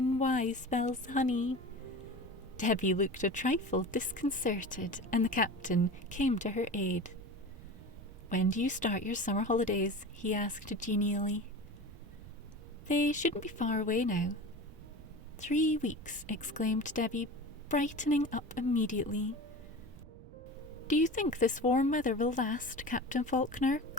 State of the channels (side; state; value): right; noise; rumble, 18 dB below the sound